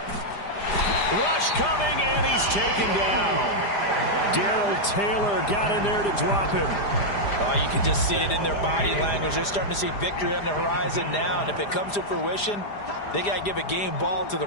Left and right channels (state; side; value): late; right; 4.9 ms